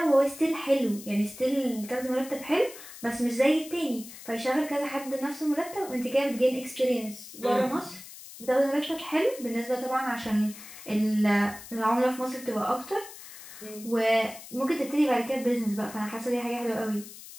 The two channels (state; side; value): noise; left; hiss, 15 dB below the sound